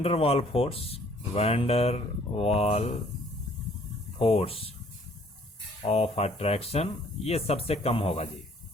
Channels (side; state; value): both; normal; correlation 0.59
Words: वाल फोर्स ऑफ अट्रैक्शन ये सबसे कम होगा जी।